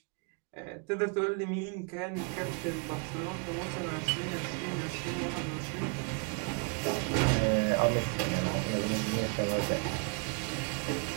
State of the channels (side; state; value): left; quieter; 34.6 dB